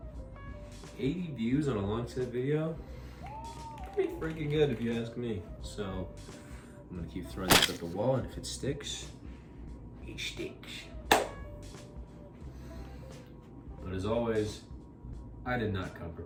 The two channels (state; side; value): identical; both; correlation 1.00